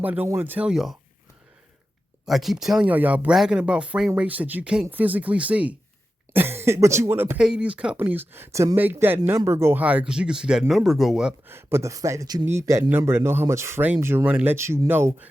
don't want to tell y'all. I keep telling y'all bragging about frame rates that you can't physically see. But you want to pay these companies to make that number go higher because you can see that number go up. But the fact that you need that number to know how much frames you're running lets you know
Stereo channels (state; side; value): normal; both; correlation 0.92